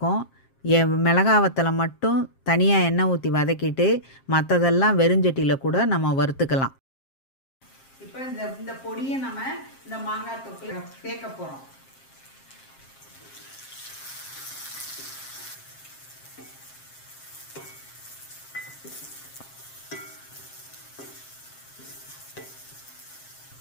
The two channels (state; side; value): late; right; 7.5 ms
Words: மிளகாய் வத்தலை மட்டும் தனியாக எண்ணெய் ஊற்றி வதக்கிட்டு மற்றதெல்லாம் வெறுஞ்சட்டியில் கூட நம்ம வறுத்துக்கலாம். இப்போ இந்த பொடியை நம்ம இந்த மாங்காய் தொக்கில் சேர்க்க போகிறோம்.